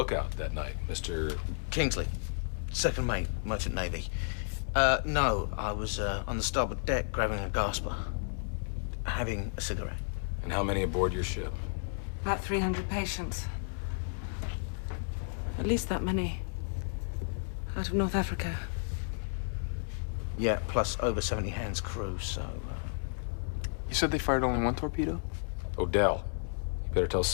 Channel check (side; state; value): right; silent; 55 dB below the other